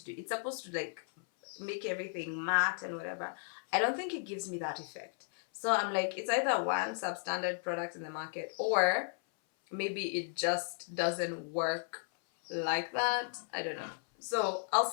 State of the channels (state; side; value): silent; right; 54 dB below the other